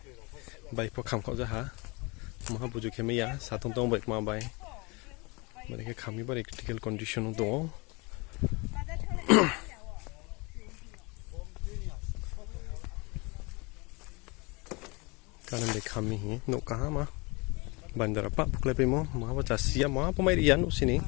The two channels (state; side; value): quieter; right; 27.3 dB